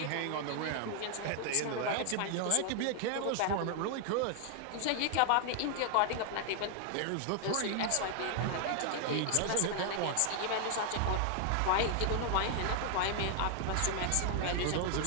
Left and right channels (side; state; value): both; different; correlation 0.00